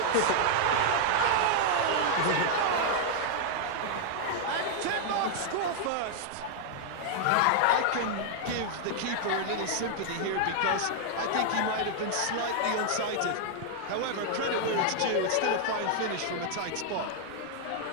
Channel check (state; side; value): different; both; correlation -0.01